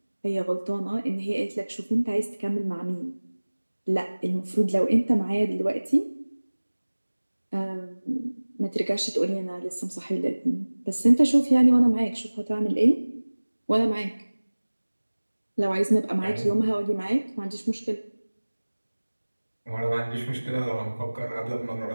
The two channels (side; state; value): both; inverted; correlation -1.00